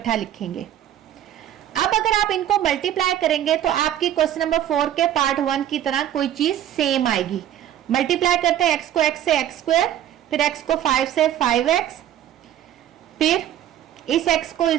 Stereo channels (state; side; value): quieter; left; 11.5 dB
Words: लिखेंगे। अब अगर आप इनको मल्टीप्लाई करेंगे तो आपकी क्वेश्चन नंबर 4 के पार्ट 1 की तरह कोई चीज सेम आएगी। मल्टीप्लाई करते हैं x को x से x², फिर x को 5 से 5x, फिर इस x को